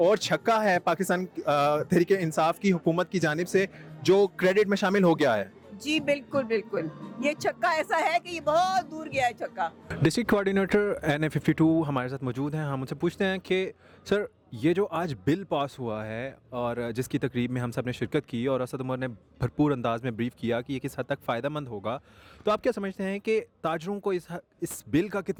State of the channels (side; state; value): both; identical; correlation 1.00